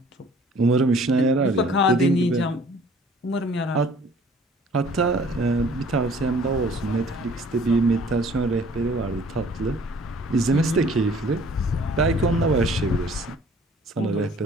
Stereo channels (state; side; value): normal; both; correlation 0.54